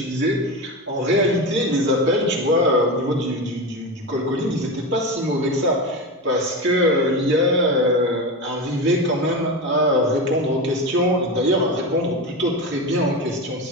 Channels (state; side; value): normal; both; correlation 0.21